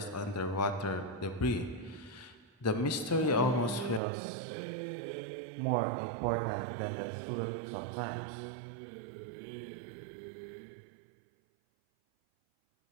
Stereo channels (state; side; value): drops out; left; at 4.0 s